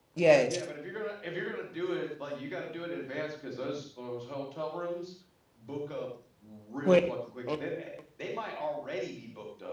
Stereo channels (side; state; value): both; identical; correlation 1.00